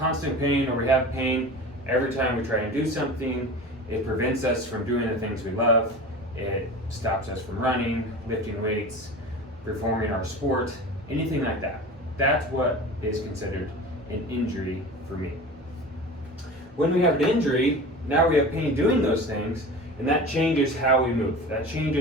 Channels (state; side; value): normal; both; correlation 0.34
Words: pain, or we have pain every time we try and do something. It prevents us from doing the things we love. It stops us from running, lifting weights, performing our sport, anything like that. That's what is considered an injury for me. When we have an injury, now we have pain doing those things, and that changes how we move. That